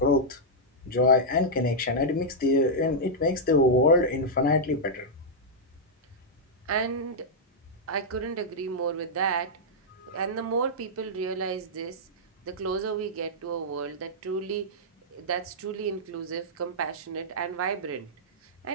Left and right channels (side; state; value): both; normal; correlation -0.07